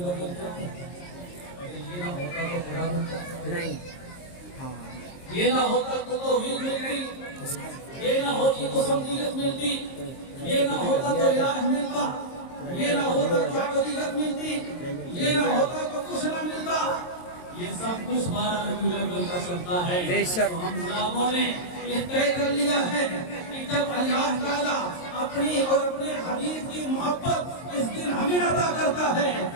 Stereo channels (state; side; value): late; right; 22 ms